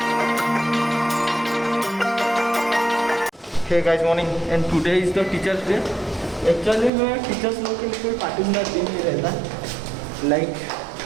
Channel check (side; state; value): left; drops out; at 6.9 s